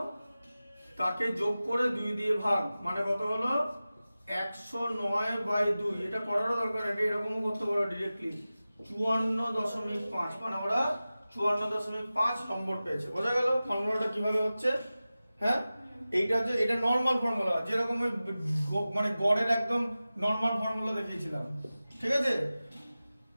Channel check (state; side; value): inverted; both; correlation -0.96